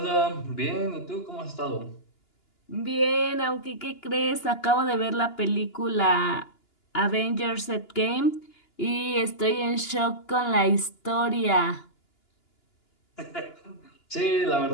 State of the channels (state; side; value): late; right; 2.9 ms